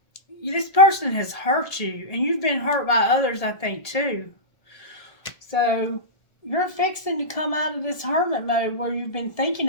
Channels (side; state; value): right; late; 1.7 ms